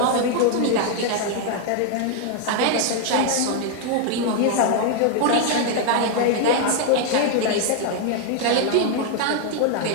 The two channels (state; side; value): different; both; correlation 0.00